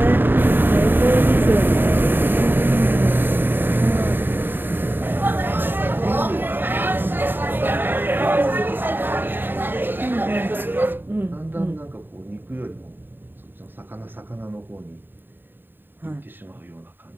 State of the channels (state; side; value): late; left; 0.095 ms